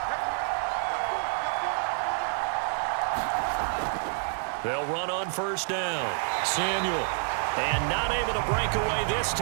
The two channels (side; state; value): left; silent; 59 dB below the other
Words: They'll run on first down. Samuel. And not able to break away this